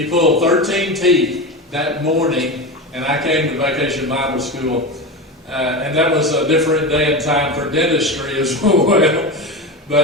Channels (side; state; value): both; normal; correlation 0.22